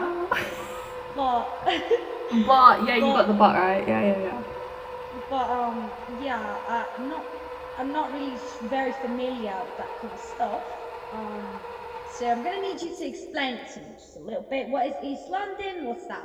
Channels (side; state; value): both; identical; correlation 1.00